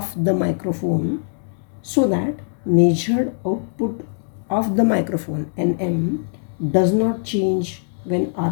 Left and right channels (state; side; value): silent; right; digital silence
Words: the microphone, so that measured output of the microphone Nm does not change when